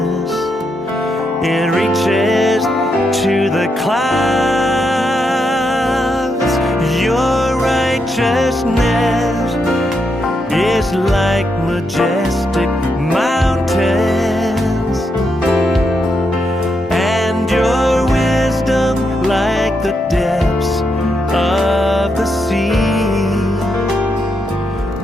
it reaches to the clouds. Your righteousness is like majestic mountains, and your wisdom like the depths of the sea.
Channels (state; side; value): normal; both; correlation 0.81